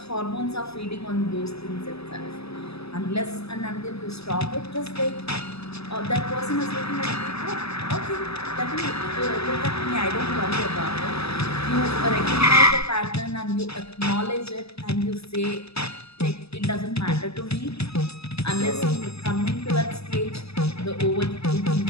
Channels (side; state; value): right; late; 0.79 ms